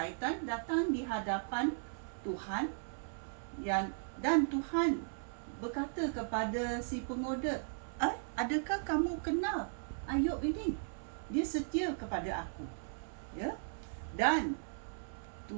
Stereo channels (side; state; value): left; silent; 53 dB below the other